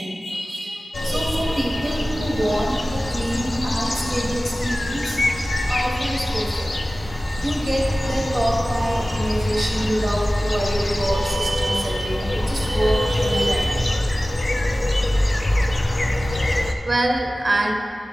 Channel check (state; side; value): normal; both; correlation 0.96